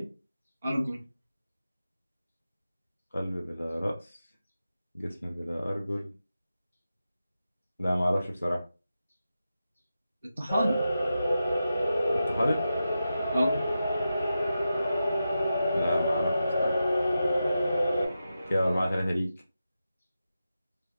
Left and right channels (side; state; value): both; inverted; correlation -0.90